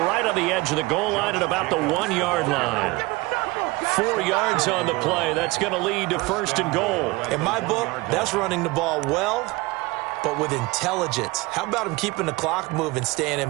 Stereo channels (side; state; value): left; quieter; 22.4 dB